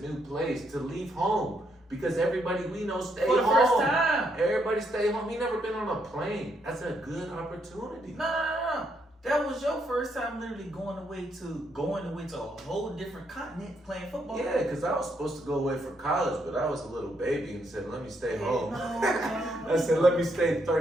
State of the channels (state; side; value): normal; both; correlation 0.76